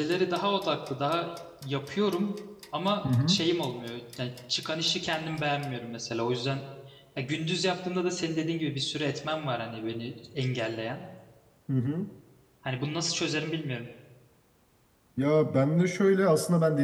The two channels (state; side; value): identical; both; correlation 1.00